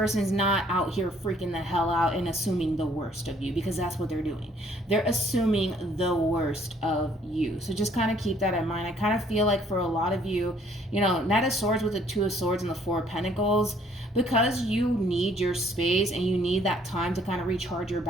not out here freaking the hell out and assuming the worst of you, because that's what they're doing. They're assuming the worst of you. So just kind of keep that in mind. I kind of feel like for a lot of you, you know, Knight of Swords with the Two of Swords and the Four of Pentacles, because you need your space and you need that time to kind of recharge your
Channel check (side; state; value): both; normal; correlation 0.62